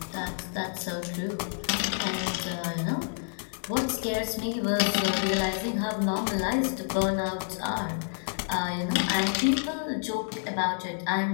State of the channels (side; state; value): right; silent; digital silence